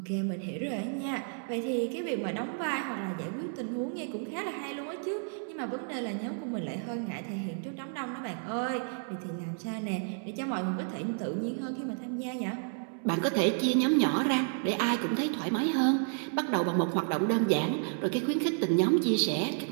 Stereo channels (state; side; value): silent; left; 57 dB below the other